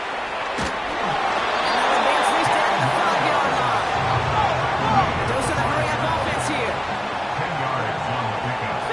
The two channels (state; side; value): noise; right; hum, 30 dB below the sound